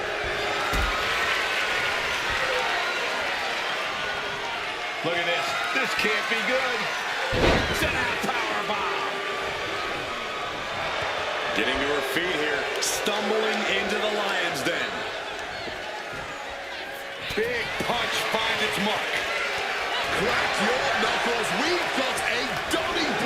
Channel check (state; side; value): identical; both; correlation 1.00